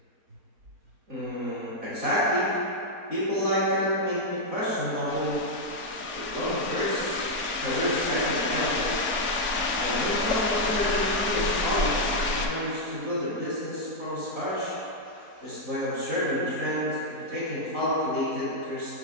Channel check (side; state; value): left; late; 4.2 ms